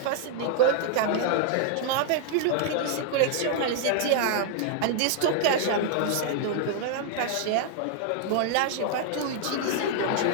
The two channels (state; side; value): different; both; correlation 0.00